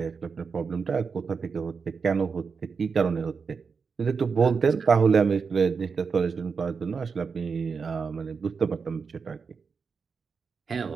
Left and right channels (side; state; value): left; quieter; 5.4 dB